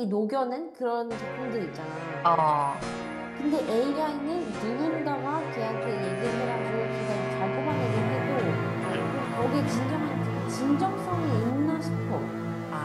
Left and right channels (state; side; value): identical; both; correlation 1.00